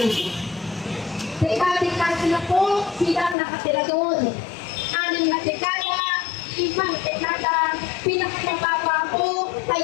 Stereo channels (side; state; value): right; drops out; at 3.4 s